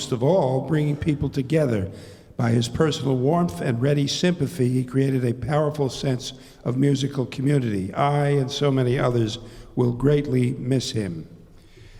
of all, bringing people together. By his personal warmth and ready sympathy, he created a powerful sense of musical community. I and so many others will greatly miss him.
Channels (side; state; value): both; identical; correlation 1.00